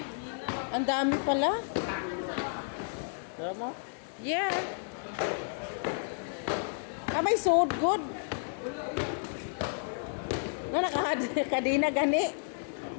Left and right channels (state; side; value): silent; right; digital silence